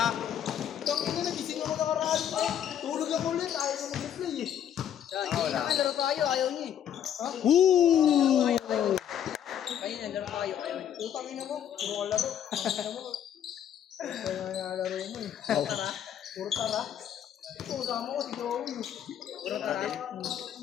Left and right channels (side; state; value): right; quieter; 9.7 dB